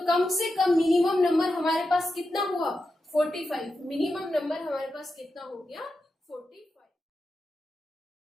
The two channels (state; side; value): normal; both; correlation 0.89